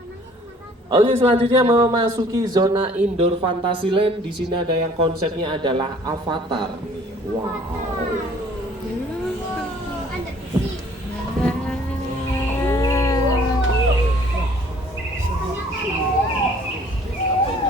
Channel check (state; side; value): normal; both; correlation 0.55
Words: Oke, selanjutnya memasuki zona indoor Fantasyland. Di sini ada yang konsepnya adalah Avatar. Wow.